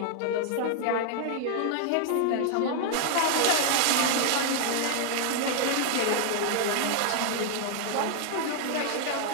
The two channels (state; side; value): different; both; correlation 0.00